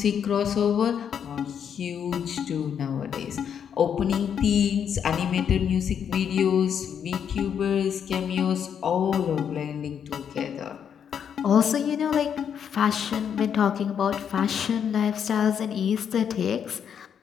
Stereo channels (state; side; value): quieter; right; 8.1 dB